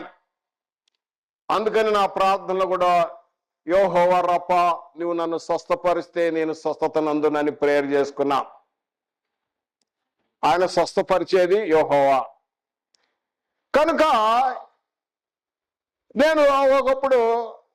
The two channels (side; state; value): both; identical; correlation 1.00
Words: అందుకని నా ప్రార్థనలో కూడా యెహోవా రఫా, నువ్వు నన్ను స్వస్థపరిస్తే నేను స్వస్థత నందునని ప్రేయర్ చేసుకున్నా. ఆయన స్వస్థపరిచేది యెహోవా. కనుక నేను ఒకప్పుడు